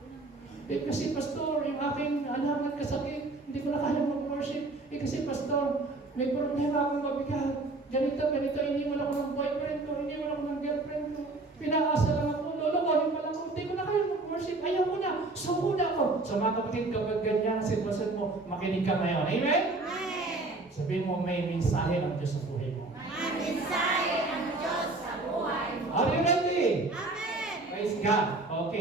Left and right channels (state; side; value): quieter; left; 3.2 dB